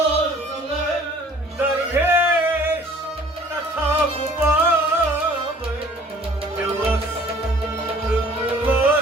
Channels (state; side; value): normal; both; correlation 0.53